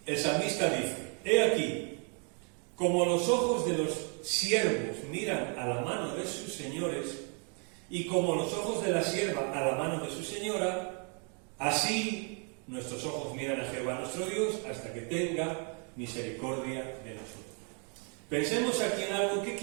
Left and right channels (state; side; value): quieter; left; 39.1 dB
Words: salmista dice, he aquí, como los ojos de los siervos miran a la mano de sus señores, y como los ojos de la sierva a la mano de su señora, así nuestros ojos miran a Jehová nuestro Dios hasta que tenga misericordia de nosotros. Pensemos aquí en algo.